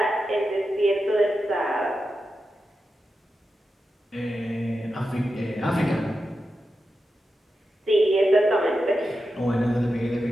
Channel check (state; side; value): normal; both; correlation 0.90